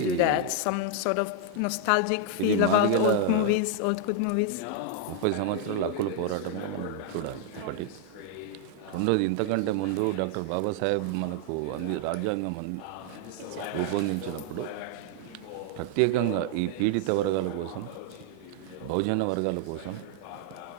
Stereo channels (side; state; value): both; different; correlation 0.00